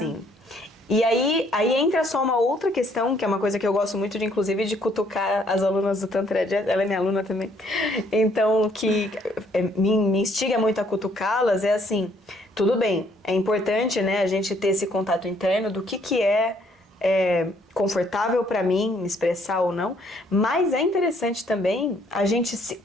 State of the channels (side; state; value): both; normal; correlation 0.65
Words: E aí entra só uma outra questão, que é uma coisa que eu gosto muito de, inclusive, de cutucar as alunas do Tantra Jazz. Ela é minha aluna também. Então, que me instiga muito a cutucá-las é assim, tudo bem, é importante, né, a gente ter esse contato interno do que é confortável para mim me expressar ou não, mas é interessante também a gente